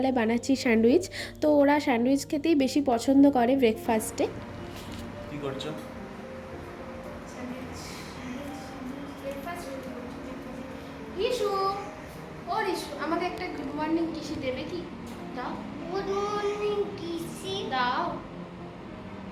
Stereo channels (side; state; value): both; identical; correlation 1.00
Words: বানাচ্ছি স্যান্ডউইচ। তো ওরা স্যান্ডউইচ খেতেই বেশি পছন্দ করে ব্রেকফাস্টে। কি করছো? রিশু, ও রিশু, আমাকে একটা গুড মর্নিং কিসি দেবে কি? দাও। গুড মর্নিং কিসি দাও।